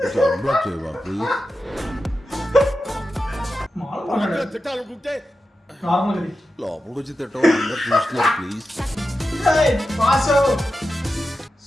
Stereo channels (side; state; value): both; normal; correlation 0.91